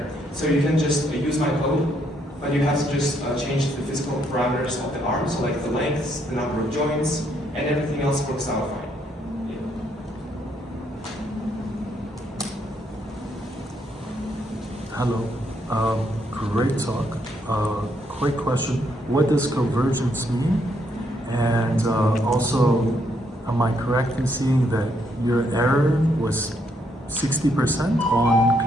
So you can just use my code, but you have to just change the physical parameters of the arm, so like the length, the number of joints, and everything else works out fine. Hello, great talk. Quick question, what does convergence mean? And also, am I correct in seeing that your error was 60% on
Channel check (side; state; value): both; normal; correlation 0.73